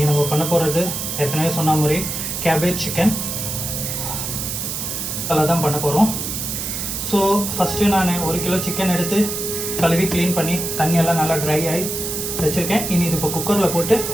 நம்ம பண்ண போகிறது ஏற்கனவே சொன்ன மாதிரி கேபேஜ் சிக்கன் அதெல்லாம் தான் பண்ண போகிறோம். ஸோ ஃபஸ்ட்டு நான் 1 கிலோ சிக்கன் எடுத்து கழுவி க்ளீன் பண்ணி தண்ணியெல்லாம் நல்லா ட்ரை ஆகி வச்சுருக்கேன். இனி இது இப்போ குக்கரில் போட்டு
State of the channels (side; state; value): right; noise; hiss, 4 dB below the sound